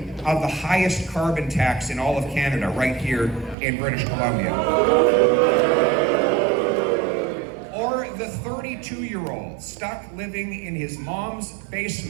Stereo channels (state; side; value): drops out; left; at 3.6 s